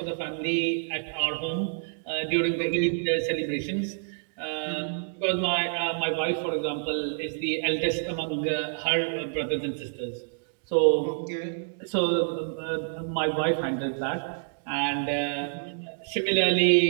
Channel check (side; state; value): left; silent; digital silence